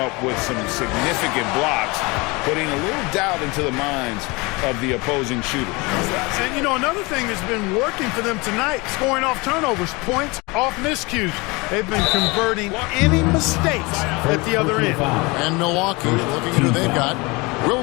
with some significant blocks, putting a little doubt into the minds of the opposing shooters. And, you know, another thing that's been working for them tonight, scoring off turnovers, points off miscues. They've been converting any mistakes at the other end. And Milwaukee, looking at who they've got,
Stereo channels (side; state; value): right; quieter; 25.6 dB